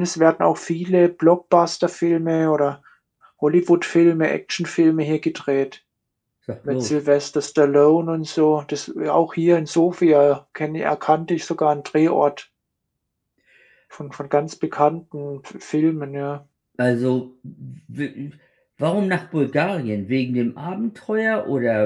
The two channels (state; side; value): identical; both; correlation 1.00